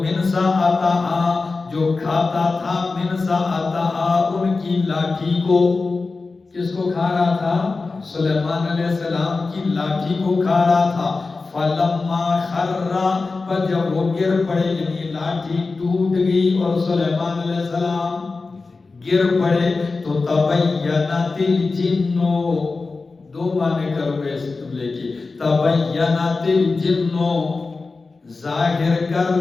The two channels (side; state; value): right; quieter; 3.9 dB